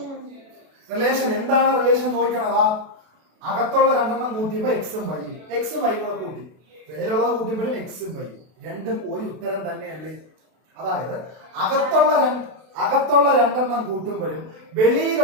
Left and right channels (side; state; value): left; late; 32 ms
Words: റിലേഷൻ എന്താണ്? റിലേഷൻ നോക്കണം. അകത്തുള്ള രണ്ടെണ്ണം കൂട്ടിയപ്പോ എക്സും വൈയും, എക്സും വൈയും കൂടെ കൂട്ടി, വെളിയിലുള്ളത് കൂട്ടിയപ്പോഴും എക്സും വൈയും രണ്ടും ഒരു ഉത്തരം തന്നെയല്ലേ? അതായത് അകത്തുള്ള രണ്ടെണ്ണം കൂട്ടുമ്പോഴും